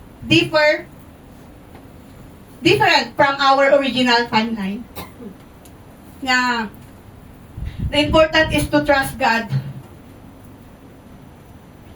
different from our original timeline. Na the important is to trust God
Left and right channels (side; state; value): both; identical; correlation 1.00